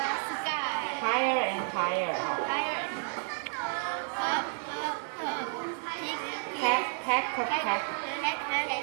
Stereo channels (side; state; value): left; silent; 57 dB below the other